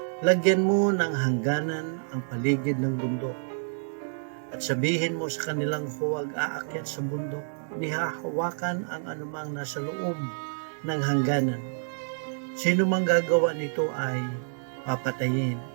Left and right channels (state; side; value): silent; left; digital silence